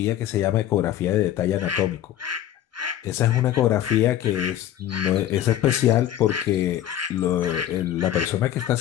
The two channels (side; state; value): right; quieter; 11.8 dB